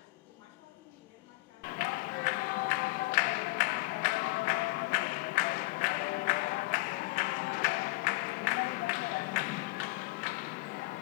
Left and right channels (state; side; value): quieter; right; 23.3 dB